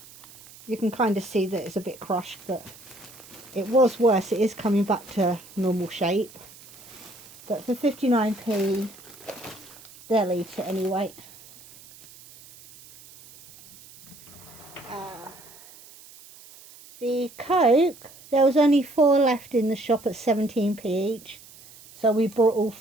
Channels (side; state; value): right; noise; hiss, 21 dB below the sound